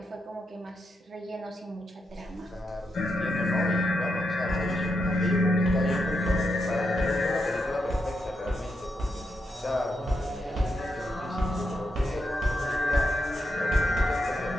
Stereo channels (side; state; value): both; normal; correlation 0.84